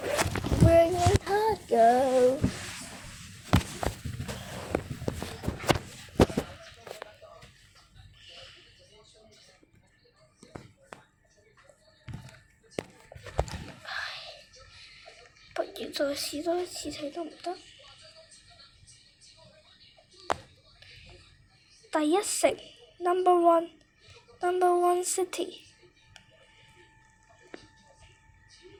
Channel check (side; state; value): both; identical; correlation 1.00